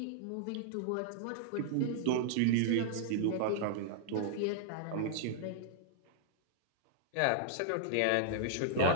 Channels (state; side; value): different; both; correlation -0.01